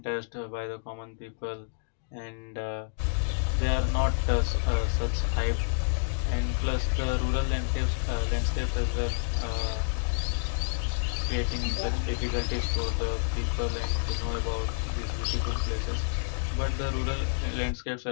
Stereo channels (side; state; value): right; silent; digital silence